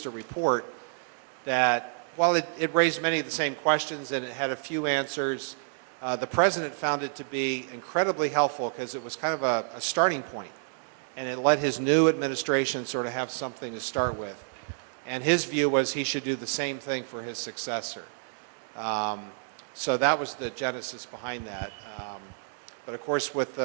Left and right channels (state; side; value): silent; left; digital silence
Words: a report that, while it raised many of the same questions and it had a few answers, the president found it to be incredibly helpful because it was kind of a starting point, and it let his new administration sort of have something to start with. And his view was he should do the same thing for his successor. So that was the genesis behind that. But of course, with